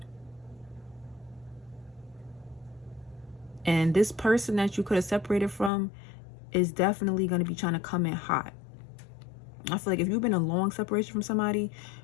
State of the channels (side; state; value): right; drops out; at 5.7 s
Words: And this person that you could have separated from is definitely going to be trying to come in hot. I feel like if you've been in a long separation from somebody